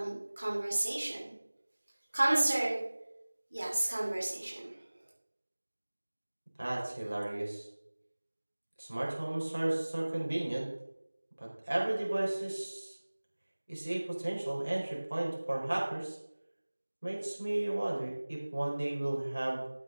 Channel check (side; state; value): both; inverted; correlation -1.00